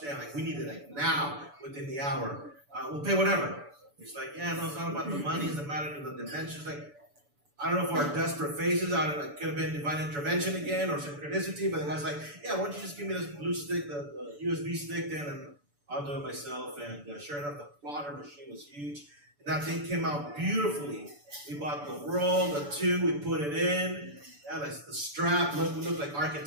We need it now, within the hour. We'll pay whatever. He's like, yeah, no, it's not about the money. It's a matter of the dimensions. I don't know if our desperate faces, I don't know, it could have been divine intervention again or synchronicity, but the guy's like, yeah, why don't you just give me this blue stick, the USB stick then, and I'll do it myself. And sure enough, the plotter machine was huge. And that thing came out beautifully. We bought the roll, the 2, we put it in. Yeah, the strap, we looked like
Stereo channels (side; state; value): left; late; 6.9 ms